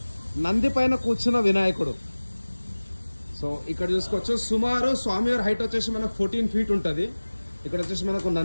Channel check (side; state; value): both; inverted; correlation -1.00